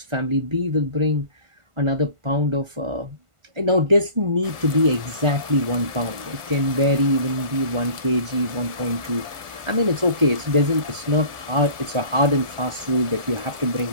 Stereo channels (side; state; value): left; late; 1.5 ms